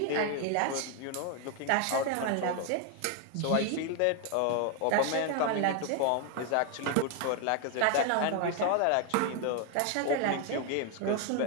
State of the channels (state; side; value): different; both; correlation 0.01